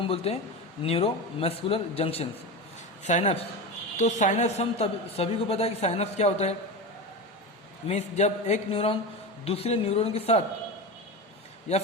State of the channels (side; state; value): both; normal; correlation 0.22